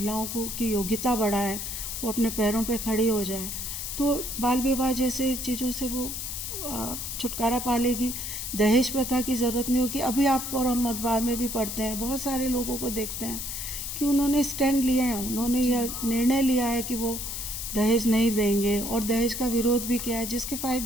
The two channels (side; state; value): left; noise; hiss, 5 dB below the sound